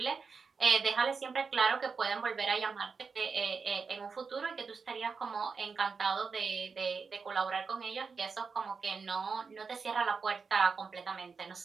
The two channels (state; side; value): quieter; left; 5.1 dB